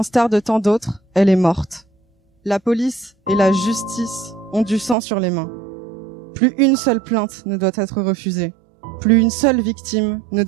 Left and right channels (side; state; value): left; drops out; at 5.0 s